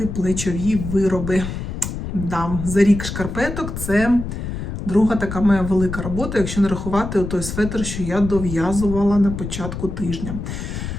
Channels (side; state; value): left; noise; rumble, 6 dB below the sound